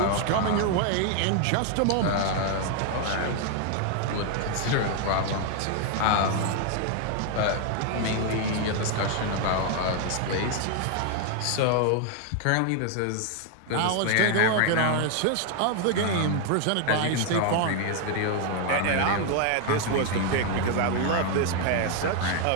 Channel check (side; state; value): both; different; correlation 0.00